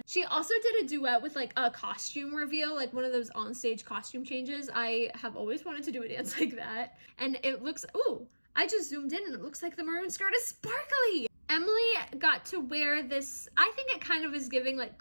She also did a duet with like a costume reveal, like one of those onstage costume changes. I have always wanted to do a dance like that. And it looks, ooh, I just zoomed in and it looks like the maroon skirt is sparkly. Emily got to wear this, I think it kind of is giving like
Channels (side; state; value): both; inverted; correlation -1.00